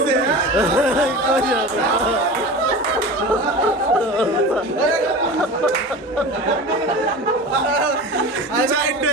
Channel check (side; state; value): both; normal; correlation 0.32